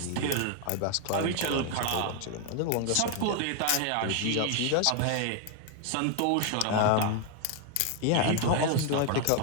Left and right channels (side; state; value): both; different; correlation 0.01